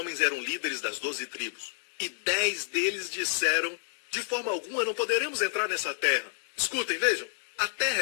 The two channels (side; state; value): right; silent; 58 dB below the other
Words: eram líderes das 12 tribos. E 10 deles disseram, de forma alguma não poderemos entrar nessa terra. Escutem, vejam. A